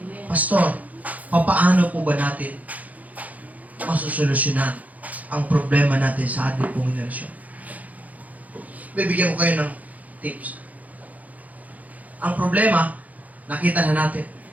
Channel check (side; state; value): left; late; 0.076 ms